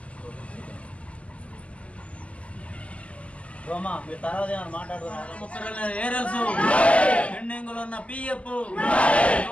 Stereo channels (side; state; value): right; late; 0.063 ms